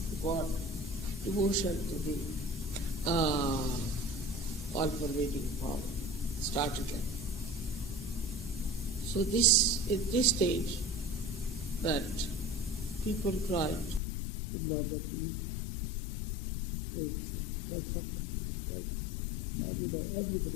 God, devotion to the all-pervading power, started like. So this, at this stage, that people tried to murder these great saints, like Socrates, like, we know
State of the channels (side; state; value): right; drops out; at 14.0 s